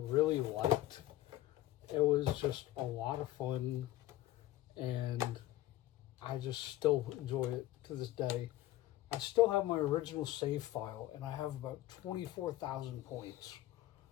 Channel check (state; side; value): quieter; right; 15.3 dB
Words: liked. It was just a lot of fun, and I just still enjoy it to this day. I still have my original save file, and I have about 24,000 points.